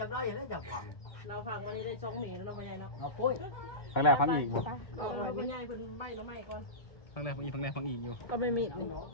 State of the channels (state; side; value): late; right; 2.1 ms